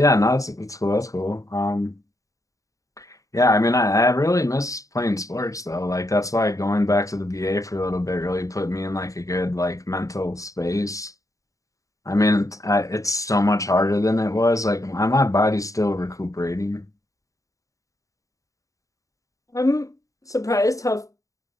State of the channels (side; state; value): right; late; 0.16 ms